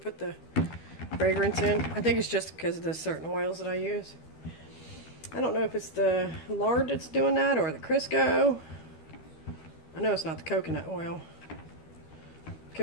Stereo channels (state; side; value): late; right; 13 ms